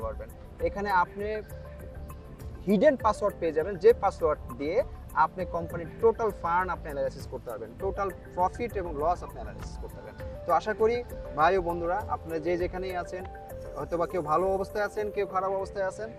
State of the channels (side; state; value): both; identical; correlation 1.00